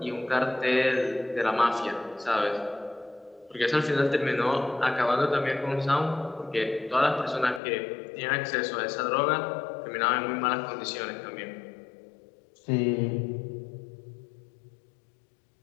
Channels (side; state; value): right; drops out; at 7.6 s